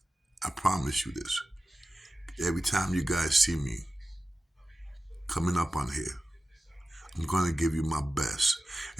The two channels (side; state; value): both; normal; correlation 0.94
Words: I promise you this. Every time you guys see me coming up on here, I'm going to give you my best.